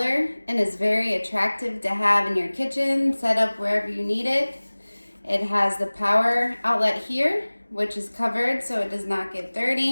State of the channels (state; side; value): inverted; both; correlation -1.00